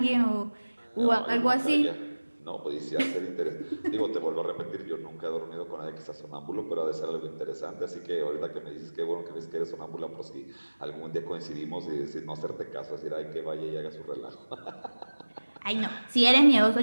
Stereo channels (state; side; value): inverted; both; correlation -1.00